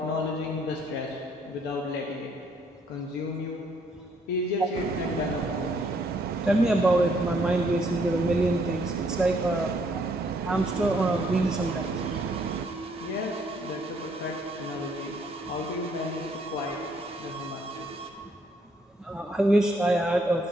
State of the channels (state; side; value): normal; both; correlation 0.68